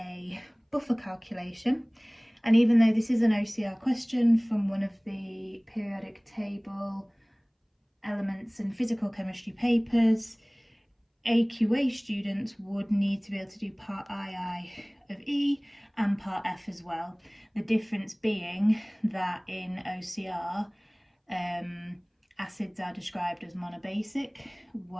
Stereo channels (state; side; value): identical; both; correlation 1.00